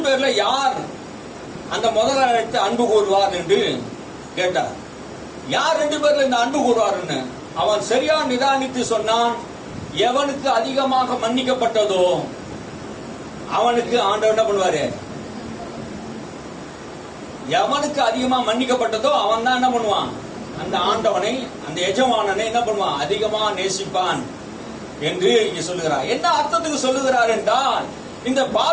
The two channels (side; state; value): both; identical; correlation 1.00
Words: பேர்ல யார் அந்த முதலாளிக்கு அன்பு கூறுவார் என்று கேட்டார். யார் 2 பேர்ல இந்த அன்பு கூறுவார்னு அவன் சரியா நிதானித்து சொன்னான். எவனுக்கு அதிகமாக மன்னிக்கப்பட்டதோ அவனுக்கு ஆண்டவர் என்ன பண்ணுவாரு, எவனுக்கு அதிகமா மன்னிக்கப்பட்டதோ அவன் தான் என்ன பண்ணுவான், அந்த ஆண்டவனை, அந்த எஜமானனை என்ன பண்ணுவான், அதிகமா நேசிப்பான் என்று இங்க சொல்லுகிறார். என்ன அர்த்தத்துக்கு சொல்லுகிறார் என்றால், இந்த